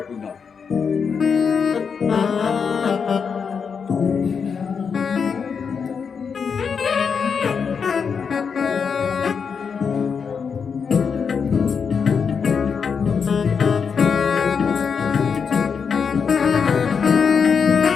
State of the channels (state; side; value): quieter; right; 6.2 dB